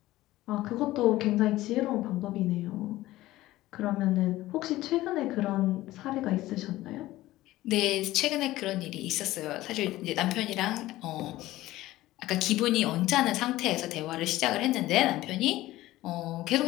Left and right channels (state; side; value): quieter; right; 16.6 dB